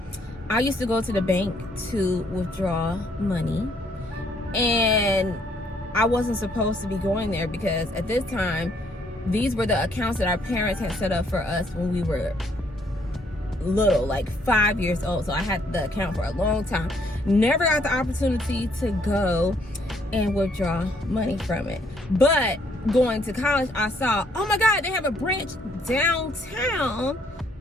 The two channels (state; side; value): normal; both; correlation 0.68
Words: I used to go to the bank to withdraw money, and I wasn't supposed to be going there because at this time, these were the accounts that our parents had set up for us when we were little, like 5 years old. So I had the account for a long time. Never got the opportunity to go and withdraw money from it. But going to college, I saw, oh my God, they have a branch downtown.